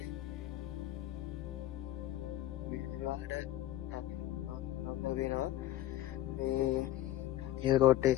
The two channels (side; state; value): right; quieter; 13.9 dB